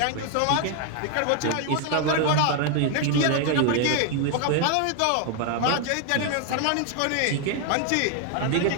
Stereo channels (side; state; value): both; different; correlation 0.01